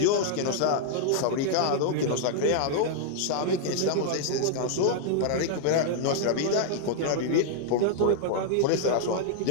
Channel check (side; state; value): both; different; correlation -0.01